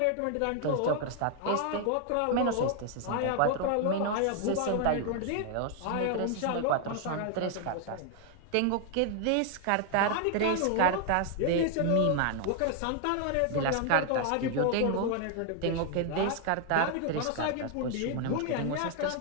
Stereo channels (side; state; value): both; different; correlation 0.00